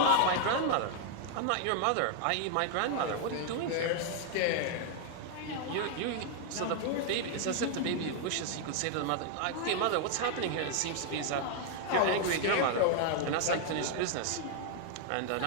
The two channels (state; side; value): different; both; correlation 0.00